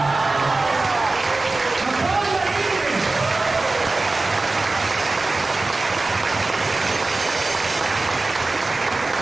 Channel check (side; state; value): left; quieter; 3.3 dB